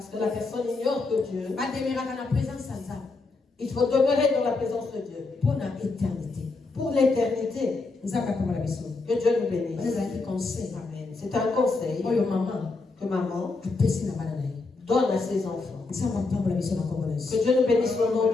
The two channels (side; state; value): right; quieter; 3.7 dB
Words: que la personne ignore que Dieu Il faut demeurer dans la présence de Dieu. Pour l'éternité. Pour l'éternité. Que Dieu nous bénisse. Amen. C'est un conseil que maman donne à ses enfants. Que Dieu nous bénisse au nom